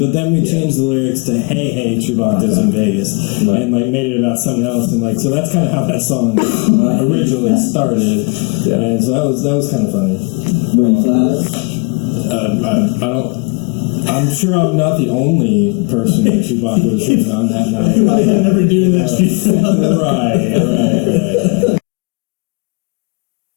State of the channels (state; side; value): quieter; right; 33.3 dB